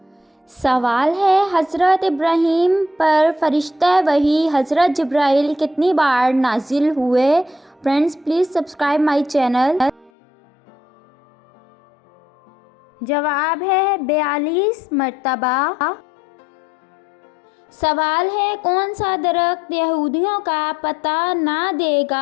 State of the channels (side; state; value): right; drops out; at 10.1 s